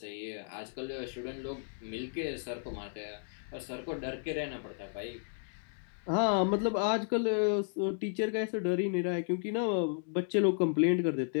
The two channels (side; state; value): right; silent; digital silence